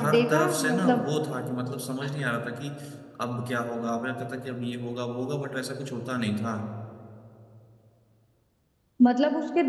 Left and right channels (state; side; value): identical; both; correlation 1.00